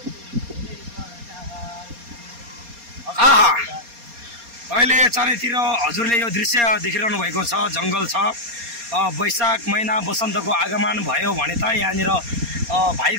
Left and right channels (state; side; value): late; left; 4.2 ms